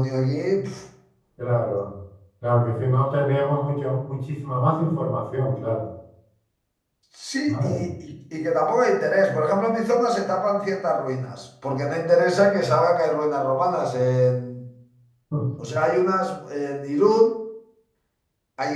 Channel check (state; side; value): identical; both; correlation 1.00